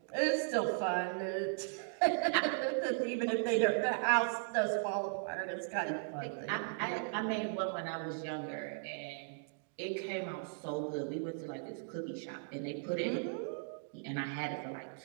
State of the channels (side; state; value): left; silent; digital silence